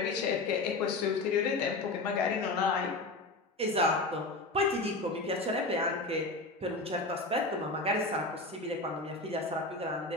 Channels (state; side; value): quieter; right; 3.0 dB